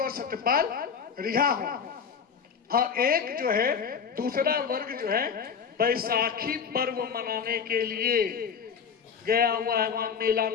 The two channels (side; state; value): right; quieter; 6.6 dB